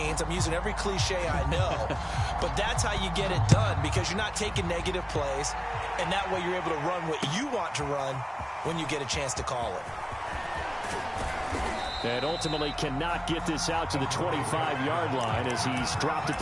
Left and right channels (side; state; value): both; identical; correlation 1.00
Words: I'm using every cliche I know, but that's how you get it done because you're not taking negative plays, and that way you're able to run what you want to run when you get a chance to call it. And ultimately cannot get this out to the 25-yard line as he's dropped at